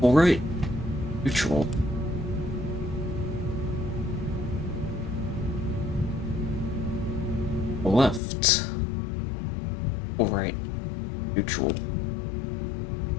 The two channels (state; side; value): drops out; right; at 8.2 s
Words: Full right. Neutral. Full left. Full right. Neutral.